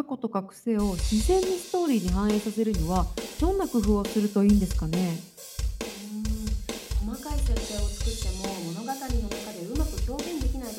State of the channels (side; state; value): both; identical; correlation 1.00